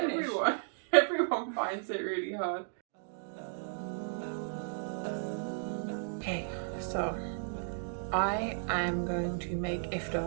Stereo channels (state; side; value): silent; left; digital silence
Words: Everyone finds it really hard. Okay, so I am going to make